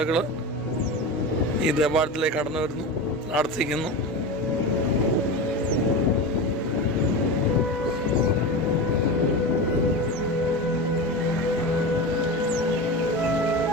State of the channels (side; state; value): both; normal; correlation 0.24